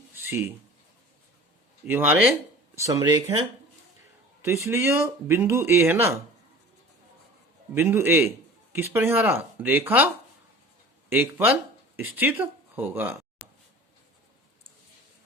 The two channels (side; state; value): both; normal; correlation 0.41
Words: सी ये हमारे समरेख हैं, तो इसलिए जो बिंदु ए है ना, बिंदु ए किस पर यहाँ रहा, रेखा 1 पर स्थित होगा।